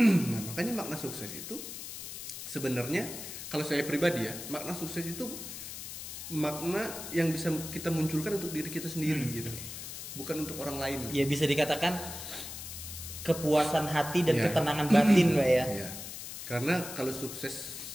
Nah makanya makna sukses itu sebenarnya, kalau saya pribadi ya, makna sukses itu makna yang bisa kita munculkan untuk diri kita sendiri gitu, bukan untuk orang lain. Ya bisa dikatakan kepuasan hati dan ketenangan batin Pak ya. Karena kalau sukses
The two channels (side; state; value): left; noise; hiss, 9 dB below the sound